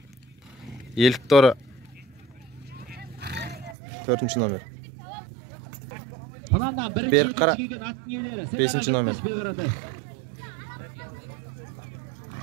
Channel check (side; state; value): left; drops out; at 3.8 s